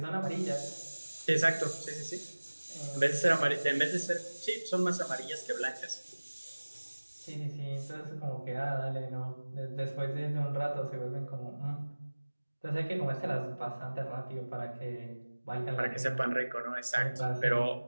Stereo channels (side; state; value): both; inverted; correlation -1.00